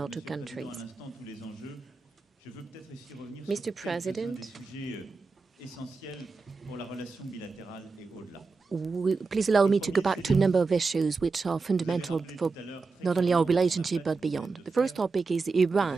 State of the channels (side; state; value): left; quieter; 4.2 dB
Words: two countries. Mr. President, please allow me to go back to a number of issues which are fundamental for not only our relationship but beyond. The first topic is